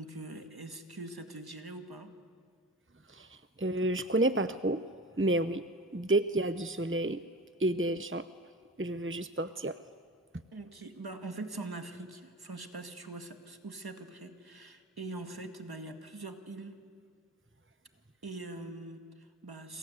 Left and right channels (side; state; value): both; normal; correlation 0.33